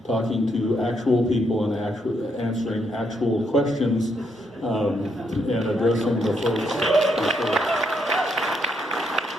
talking to actual people and answering actual questions and addressing the folks.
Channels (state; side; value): normal; both; correlation 0.76